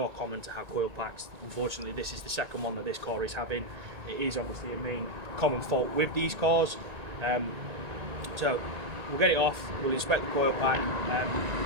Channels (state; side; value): late; left; 1.8 ms